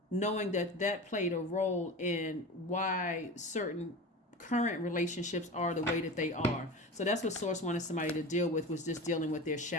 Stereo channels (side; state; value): both; normal; correlation 0.31